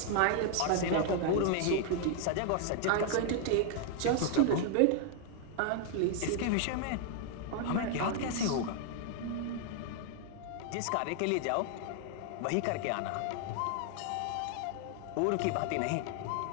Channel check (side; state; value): both; different; correlation 0.00